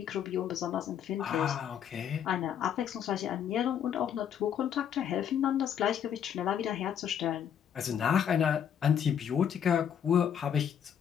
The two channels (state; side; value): quieter; right; 8.7 dB